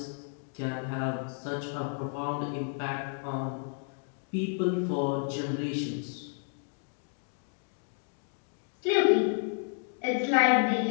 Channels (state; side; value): silent; right; 57 dB below the other